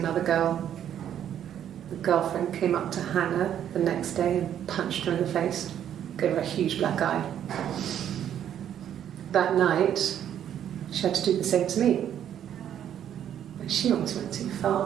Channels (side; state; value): left; quieter; 10.0 dB